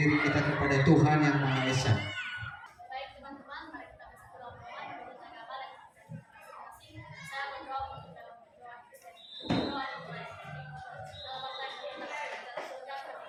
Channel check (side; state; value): both; identical; correlation 1.00